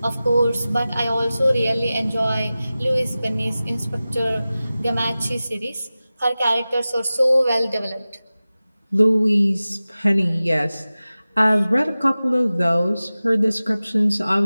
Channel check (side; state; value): both; inverted; correlation -0.96